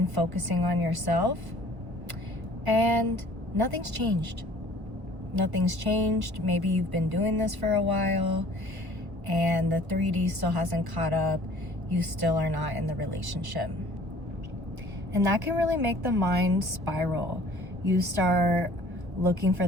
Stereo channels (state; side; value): late; left; 1.3 ms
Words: focusing on yourself. And nothing's changed. Nothing's changed. Maybe you've been doing this for a while and the 3D still hasn't caught up. You still are not in the relationship. And that can really make the mind spiral. You start looking for